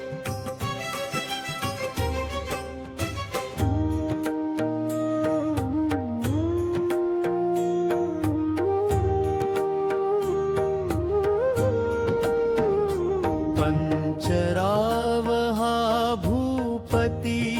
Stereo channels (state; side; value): identical; both; correlation 1.00